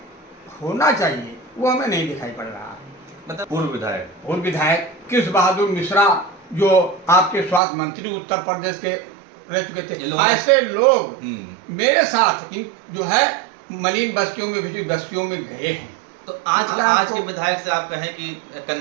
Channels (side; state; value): left; drops out; at 7.6 s